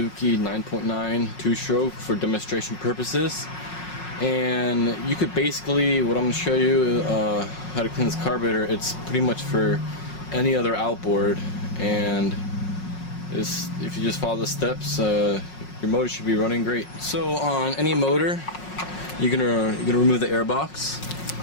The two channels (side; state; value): right; late; 5.5 ms